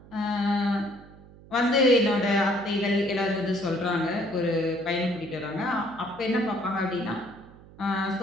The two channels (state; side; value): noise; right; hum, 21 dB below the sound